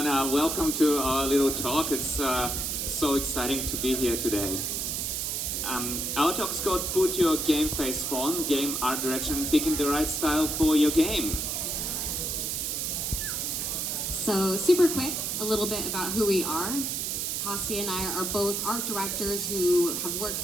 welcome to our little talk. It's so exciting to be here today. Our talk is called Put Your Game Face On, Game Art Direction, Picking the Right Style for Your Game. So super quick, a little bit about who we are. Kostia and I are both art directors who have worked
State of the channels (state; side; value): noise; right; hiss, 1 dB below the sound